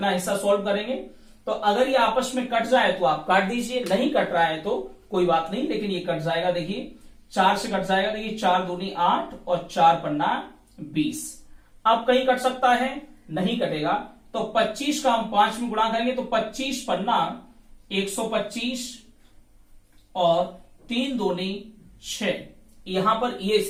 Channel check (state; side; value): identical; both; correlation 1.00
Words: हिस्सा सॉल्व करेंगे। तो अगर ये आपस में कट जाए तो आप काट दीजिए, नहीं कट रहा है तो कोई बात नहीं, लेकिन ये कट जाएगा। देखिए 4 से कट जाएगा, देखिए 4 दूनी 8 और 4 पन्ना 20। अब कहीं कट सकता है, नहीं कटेगा। तो 25 का हम 5 में गुणा करेंगे, तो 25 पन्ना 125 और 3 दूनी 6। यहां पर ये